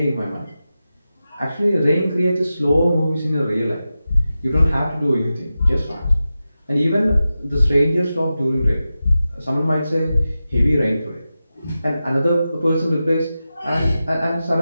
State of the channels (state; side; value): inverted; both; correlation -0.93